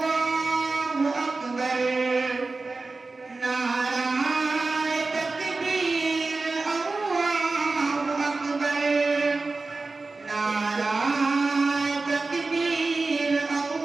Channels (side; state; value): left; quieter; 3.7 dB